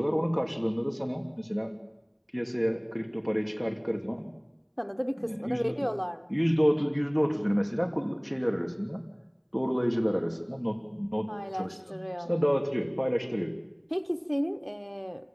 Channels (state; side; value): identical; both; correlation 1.00